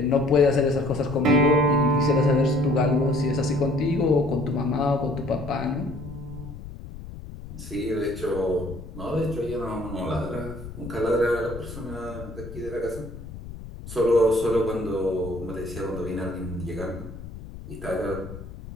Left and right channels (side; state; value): left; noise; rumble, 12 dB below the sound